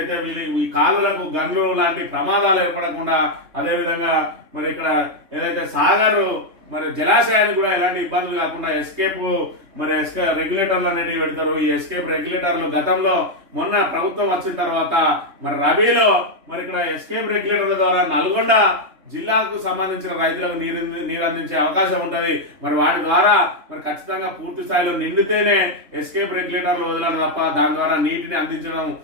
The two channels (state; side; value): late; left; 3.2 ms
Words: ఈ కాలువలకు గన్లు లాంటి ప్రమాదాలు ఏర్పడకుండా, అదేవిధంగా మరి ఇక్కడ ఏదైతే సాగర్ మరి జలాశయానికి కూడా ఎలాంటి ఇబ్బందులు కాకుండా ఎస్కేప్ రెగ్యులేటర్లు అనేవి పెడతారు. ఈ ఎస్కేప్ రెగ్యులేటర్లు గతంలో మొన్న ప్రభుత్వం వచ్చిన తర్వాత మరి రబీలో మరి ఇక్కడ ఎస్కేప్ రెగ్యులేటర్ల ద్వారా నల్గొండ జిల్లాకు సంబంధించిన రైతులకు నీరు అందించే అవకాశం ఉంటుంది. మరి వాటి ద్వారా మరి ఖచ్చితంగా పూర్తి స్థాయిలో నిండితేనే ఎస్కేప్ రెగ్యులేటర్లు వదలను తప్ప దాని ద్వారా నీటిని అందించడం